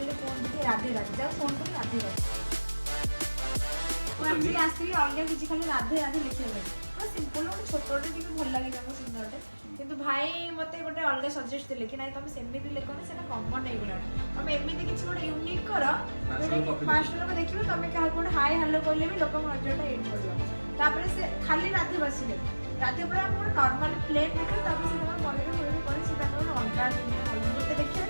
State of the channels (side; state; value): both; inverted; correlation -1.00